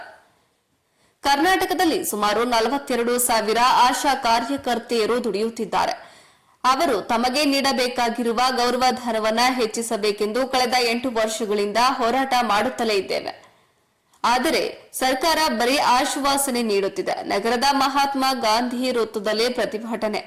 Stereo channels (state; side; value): identical; both; correlation 1.00